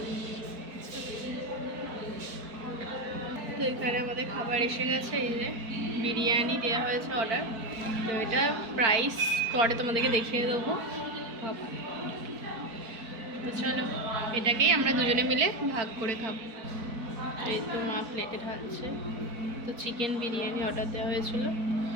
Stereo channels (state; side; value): late; left; 4.5 ms